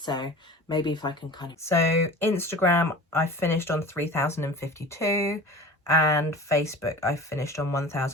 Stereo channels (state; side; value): normal; both; correlation 0.38